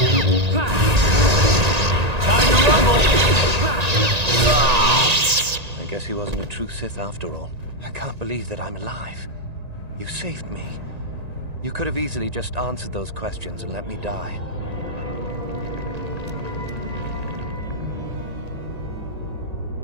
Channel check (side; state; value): left; late; 1.9 ms